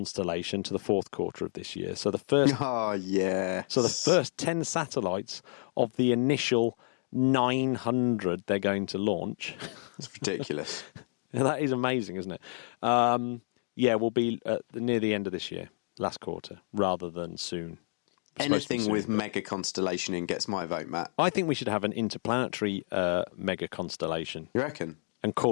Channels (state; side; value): silent; right; digital silence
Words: to the fourth quarter of this year. So the first, So the first 10 satellites of the initial 900 they're going to launch. It's ridiculous. That is amazing, isn't it? Will be near the end of this year. Last quarter, rather than soon. Anything with mega constellation in gets my vote, Matt. I think we should have an interplanetary mega constellation. You reckon? And